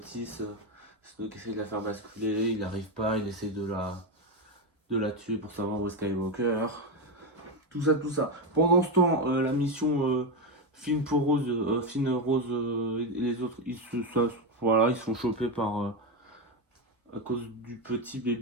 6. Snoke essaie de la faire basculer, il n'arrive pas, il essaie de la tuer pour savoir où est Skywalker. Tout ça. Pendant ce temps, la mission Finn, Rose et les autres, ils sont chopés par à cause du petit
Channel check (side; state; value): both; normal; correlation 0.11